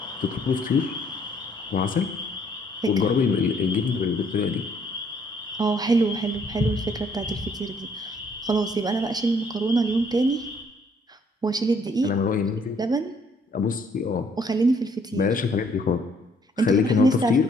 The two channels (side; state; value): both; normal; correlation 0.65